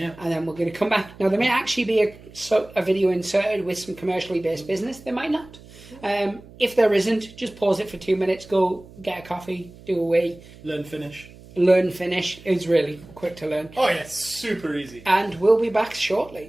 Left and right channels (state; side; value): noise; right; hum, 21 dB below the sound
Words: And then we're going to come back. Now, there may actually be a video inserted with some commercially based business. There might not. If there isn't, just pause it for 2 minutes, go get a coffee, do a wee. Learn Finnish. Learn Finnish. It's really quick to learn. Oh, yeah, super easy. And we'll be back